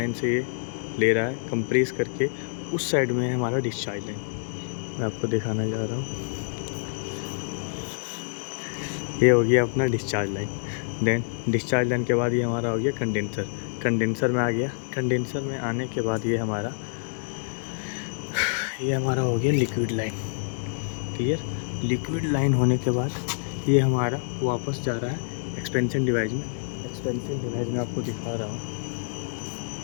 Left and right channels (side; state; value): right; silent; digital silence